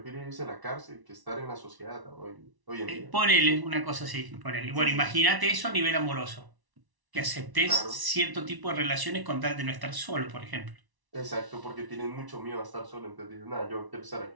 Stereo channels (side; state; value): left; late; 1.0 ms